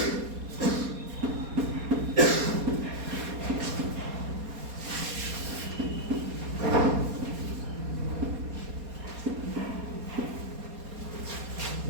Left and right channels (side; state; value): left; late; 4.2 ms